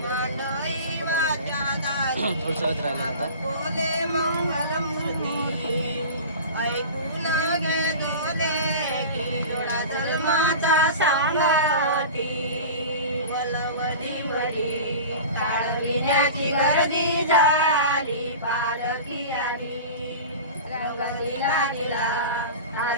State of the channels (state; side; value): inverted; both; correlation -0.34